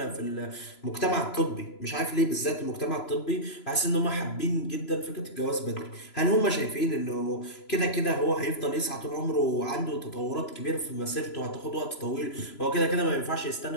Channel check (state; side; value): late; right; 3.0 ms